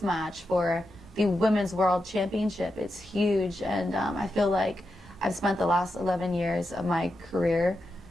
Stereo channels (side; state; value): both; normal; correlation 0.88